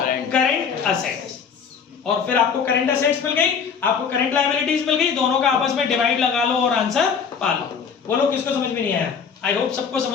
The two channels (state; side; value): quieter; right; 6.5 dB